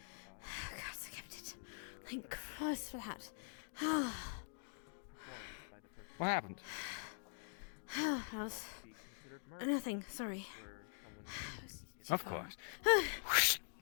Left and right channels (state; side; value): silent; right; digital silence